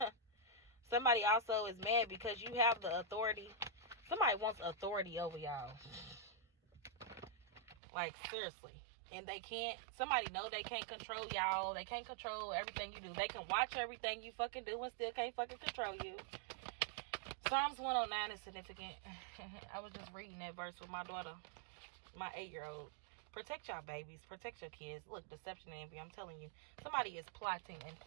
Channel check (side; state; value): left; drops out; at 7.8 s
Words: Somebody also is mad because you have the authority. Somebody wants authority over y'all. Like, seriously. And they can't. Somebody know they can't control y'all. They can't control everything you do. They can watch everything you fucking do and still can't fucking control you. Psalms 109 is significant. I was just reading that verse with my daughter, my 8-year-old. Protect y'all babies. Protect your kids. Look, deception and envy. I'm telling you. Somebody is plotting and